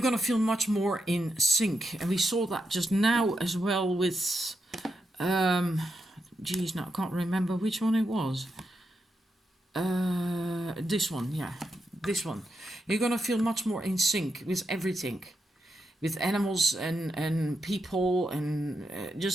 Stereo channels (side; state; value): both; normal; correlation 0.85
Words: to feel much more in sync. And we saw that just now as well with, now I can't remember which one it was. This one, yeah, this one. You're going to feel much more in sync with everything. With animals and people and